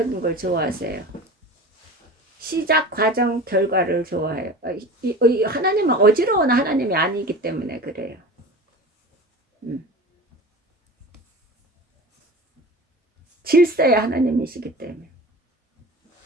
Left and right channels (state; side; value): normal; both; correlation 0.36